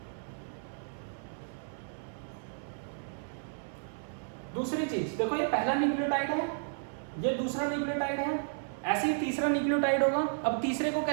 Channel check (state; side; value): silent; left; digital silence